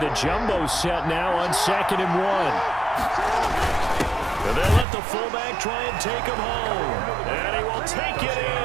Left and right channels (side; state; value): left; drops out; at 4.9 s